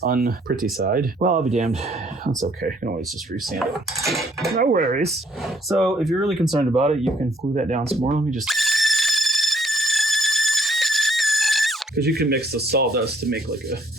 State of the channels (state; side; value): normal; both; correlation 0.65